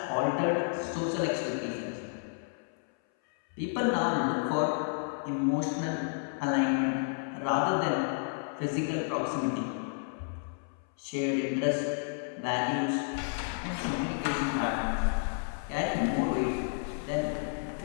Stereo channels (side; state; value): right; silent; 57 dB below the other